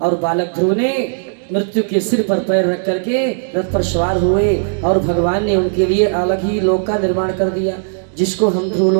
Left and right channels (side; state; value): left; silent; digital silence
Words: बालक ध्रुव ने मृत्यु के सिर पर पैर रख करके रथ पर सवार हुए और भगवान ने उनके लिए अलग ही लोक का निर्माण कर दिया, जिसको हम ध्रुव